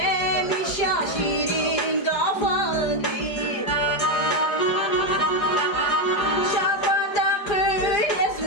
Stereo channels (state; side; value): late; right; 4.9 ms